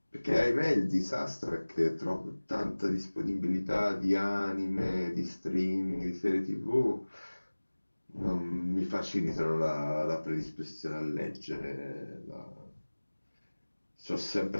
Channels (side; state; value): both; inverted; correlation -1.00